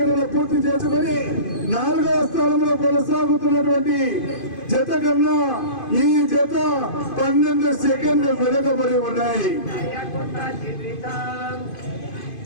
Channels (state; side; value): late; right; 2.5 ms